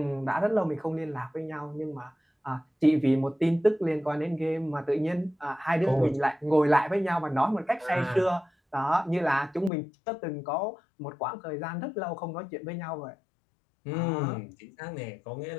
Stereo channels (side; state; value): right; drops out; at 9.7 s